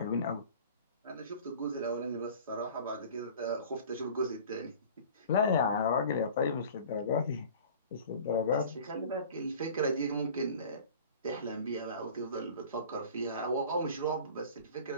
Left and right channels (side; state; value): both; inverted; correlation -0.43